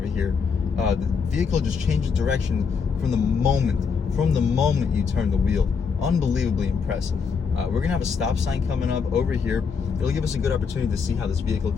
here, the vehicle just changes direction from the moment you turn the wheel. Unbelievably impressive. We're gonna have a stop sign coming up over here. It'll give us a good opportunity to see how this vehicle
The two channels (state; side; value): quieter; right; 5.8 dB